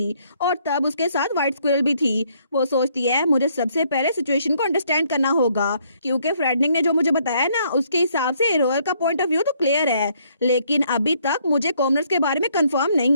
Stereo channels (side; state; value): both; inverted; correlation -0.68